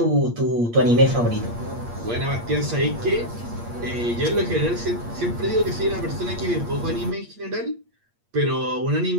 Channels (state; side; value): late; left; 8.5 ms